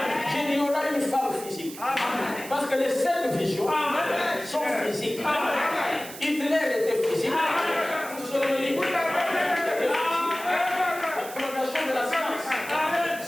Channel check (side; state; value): right; noise; hiss, 13 dB below the sound